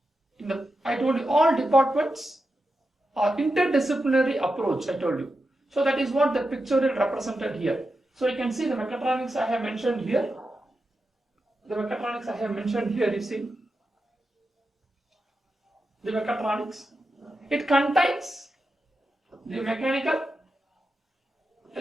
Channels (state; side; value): normal; both; correlation 0.89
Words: I told you all departments are interdisciplinary approach. I told you. So that is what the pictorial represented here. So you can see the mechatronics I have mentioned here. The mechatronics I have mentioned here. You see the mechatronics. It contains the mechanical,